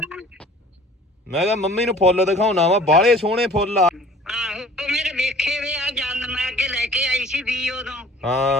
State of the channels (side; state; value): both; normal; correlation 0.49